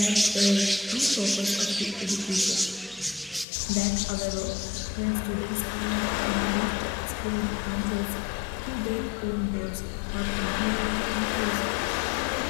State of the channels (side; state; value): right; drops out; at 3.5 s